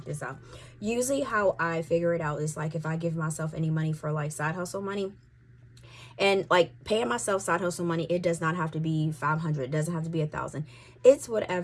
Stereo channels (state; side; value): identical; both; correlation 1.00